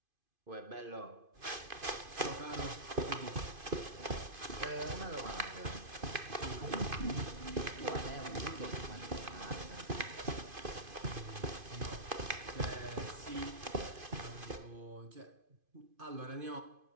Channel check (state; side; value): late; left; 2.5 ms